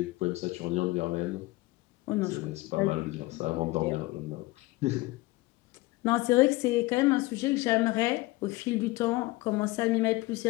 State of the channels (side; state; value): right; quieter; 20.7 dB